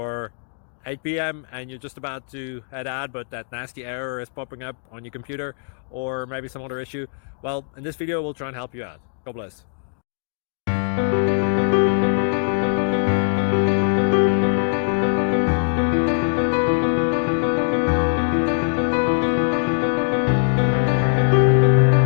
8 p.m. and you're just about to head out, but that nasty error is popping up on your computer, or maybe some other issue. Well, in this video we'll try and help you out. God bless.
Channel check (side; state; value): right; silent; digital silence